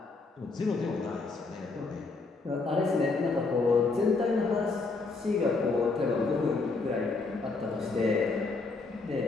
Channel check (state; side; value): quieter; right; 3.9 dB